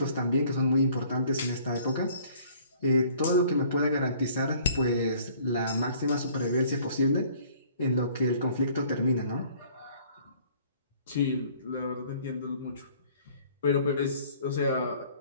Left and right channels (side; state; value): both; inverted; correlation -0.56